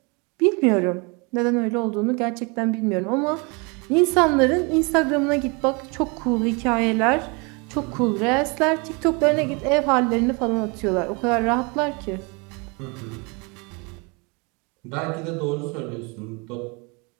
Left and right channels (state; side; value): quieter; left; 30.4 dB